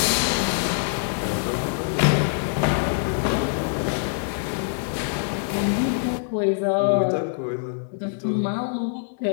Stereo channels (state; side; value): silent; right; 62 dB below the other